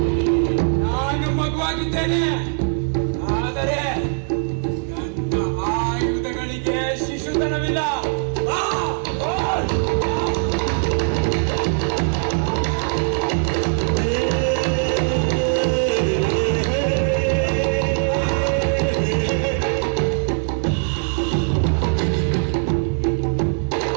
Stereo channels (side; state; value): left; silent; digital silence